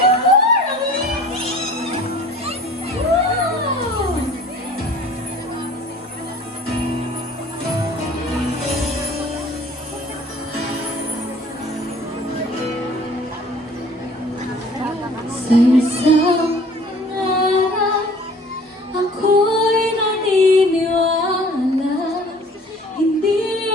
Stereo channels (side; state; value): both; normal; correlation 0.50